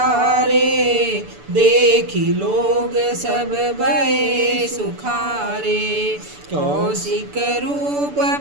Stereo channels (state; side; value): late; left; 6.9 ms